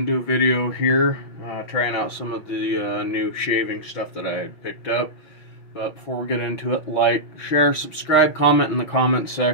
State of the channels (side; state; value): right; late; 5.8 ms